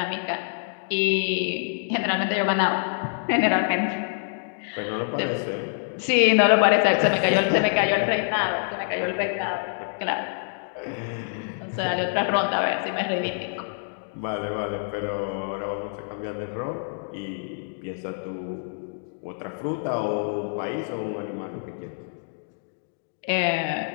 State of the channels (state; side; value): silent; right; digital silence